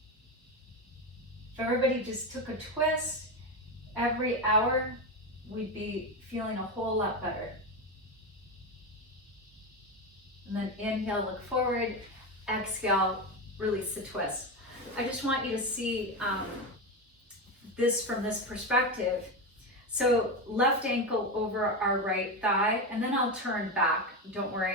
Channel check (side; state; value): both; normal; correlation 0.15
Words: If everybody just took a twist every hour, we'd be feeling a whole lot better. And then inhale, look forward, exhale, release the twist. I just want you to see this from this perspective. So left ankle over our right thigh, and then I'll turn back, don't